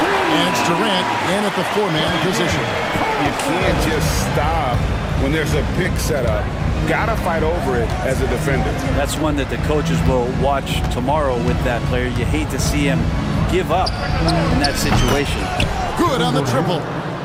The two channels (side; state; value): both; identical; correlation 1.00